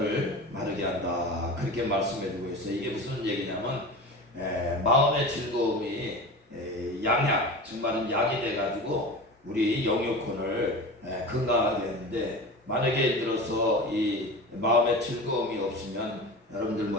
마르게 한다, 그렇게 말씀해주고 있어요. 이게 무슨 얘기냐면 마음의 즐거움이 양약, 정말은 약이 돼가지고 우리 영육혼을 건강하게 하는데, 만약에 예를 들어서 이 마음의 즐거움이 없으면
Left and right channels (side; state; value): both; normal; correlation 0.31